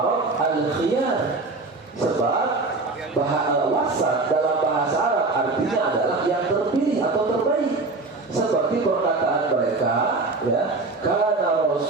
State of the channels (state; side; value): quieter; left; 3.5 dB